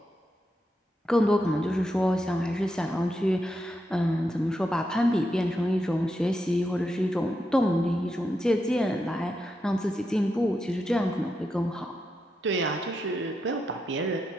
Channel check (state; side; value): normal; both; correlation 0.85